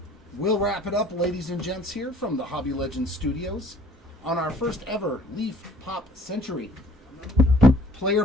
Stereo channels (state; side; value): normal; both; correlation 0.56